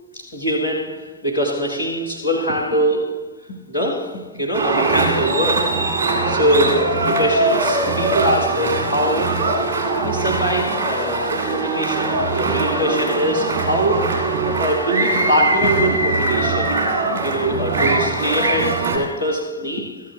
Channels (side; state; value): both; inverted; correlation -0.32